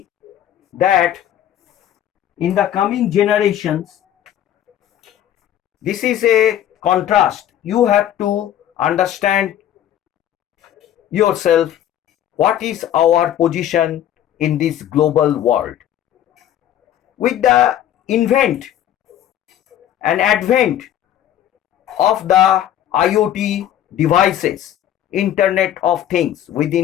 that in the coming generations, this is a contrast. You have to understand yourself what is our position in this global world. With the invent and advent of the IoT devices, Internet of Things,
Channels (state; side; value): quieter; right; 11.3 dB